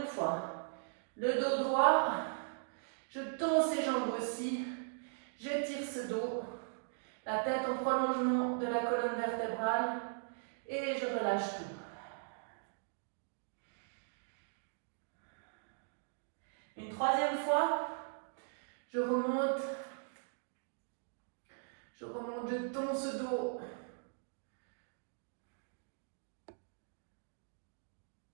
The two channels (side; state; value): left; silent; digital silence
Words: fois. Le dos droit. Je tends ses jambes aussi. J'étire ce dos. La tête en prolongement de la colonne vertébrale. Et je relâche tout. Une troisième fois, je remonte, je tends ce dos.